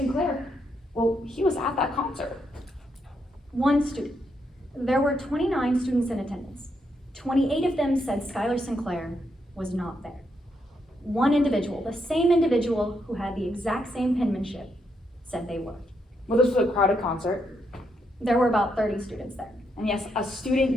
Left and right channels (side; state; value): both; normal; correlation 0.79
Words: well, he was at that concert. One student. There were 29 students in attendance. 28 of them said Skylar Sinclair was not there. One individual, the same individual who had the exact same penmanship, said they were. Well, this was a crowded concert. There were about 30 students there. And yes, a